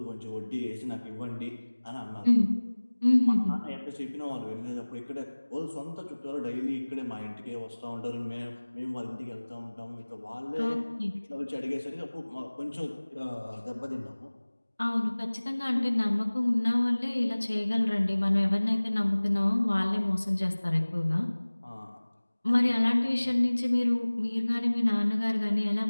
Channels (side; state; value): both; inverted; correlation -1.00